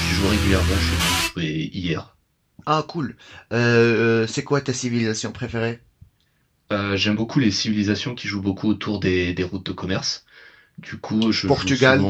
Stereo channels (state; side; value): identical; both; correlation 1.00